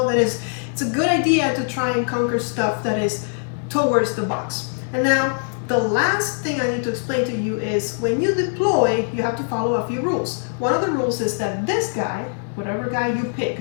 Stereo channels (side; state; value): right; silent; 64 dB below the other